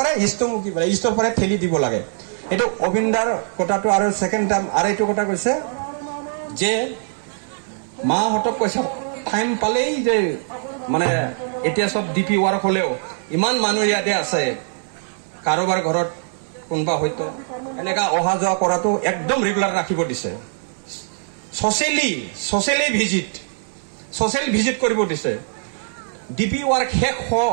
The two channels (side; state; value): left; silent; 65 dB below the other